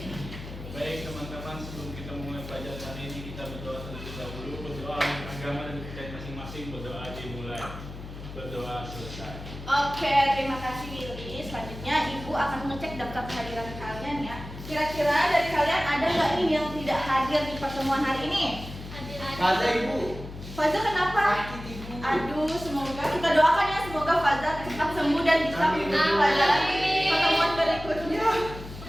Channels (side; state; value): left; noise; hum, 12 dB below the sound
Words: Baik teman-teman, sebelum kita mulai pelajaran hari ini, kita berdoa terlebih dahulu. Berdoa untuk agama dan kita masing-masing. Berdoa dimulai. Berdoa selesai. Oke, terima kasih Billy. Selanjutnya Ibu akan mengecek daftar kehadiran kalian ya. Kira-kira dari kalian ada nggak nih yang tidak hadir di pertemuan hari ini? Ada Ibu. Faza kenapa? Sakit Ibu. Aduh, semoga kita doakan ya, semoga Faza cepat sembuh dan bisa mengikuti pelajaran pertemuan berikutnya.